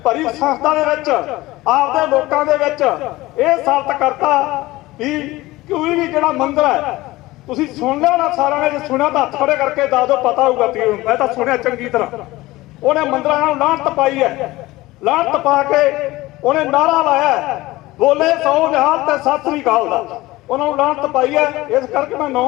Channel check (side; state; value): right; quieter; 18.9 dB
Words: ਭਰੀ ਸੰਸਥਾ ਦੇ ਵਿੱਚ, ਆਪਦੇ ਲੋਕਾਂ ਦੇ ਵਿੱਚ ਇਹ ਸਾਬਤ ਕਰਤਾ ਵੀ ਕੋਈ ਵੀ ਜਿਹੜਾ ਮੰਦਰ ਹੈ, ਤੁਸੀਂ ਸੁਣ ਲਿਆ ਨਾ ਸਾਰਿਆਂ ਨੇ, ਜੇ ਸੁਣਿਆ ਤਾਂ ਹੱਥ ਖੜੇ ਕਰਕੇ ਦੱਸ ਦਿਓ, ਪਤਾ ਹੋਊਗਾ ਤੀ, ਮੈਂ ਤਾਂ ਸੁਣਿਆ ਚੰਗੀ ਤਰ੍ਹਾਂ। ਉਹਨੇ ਮੰਦਰਾਂ ਨੂੰ ਲਾਹਨਤ ਪਾਈ ਹੈ, ਲਾਹਨਤ ਪਾ ਕੇ ਉਹਨੇ ਨਾਰਾ ਲਾਇਆ, ਬੋਲੇ ਸੌ ਨਿਹਾਲ ਤੇ ਸਤਿ ਸ੍ਰੀ ਅਕਾਲ ਦਾ, ਉਹਨਾਂ ਨੂੰ ਲਾਹਨਤ ਪਾਈ ਹੈ। ਇਸ ਕਰਕੇ ਮੈਂ